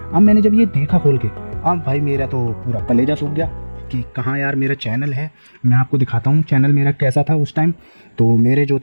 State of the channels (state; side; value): inverted; both; correlation -1.00